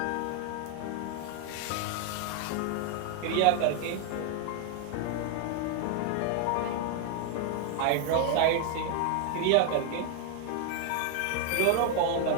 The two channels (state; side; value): different; both; correlation 0.00